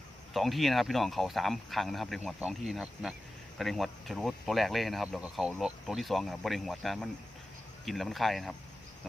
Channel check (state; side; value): normal; both; correlation 0.94